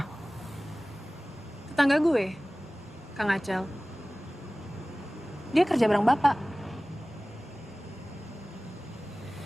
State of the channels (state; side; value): normal; both; correlation 0.98